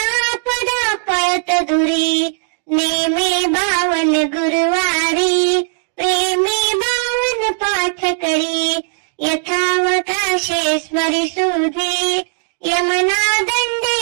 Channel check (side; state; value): left; silent; digital silence